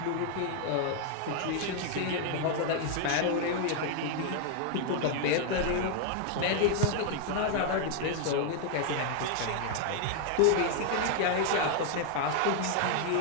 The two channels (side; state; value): both; different; correlation 0.00